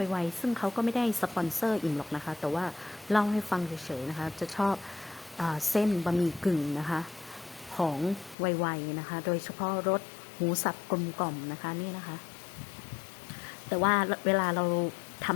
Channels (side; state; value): right; drops out; at 8.3 s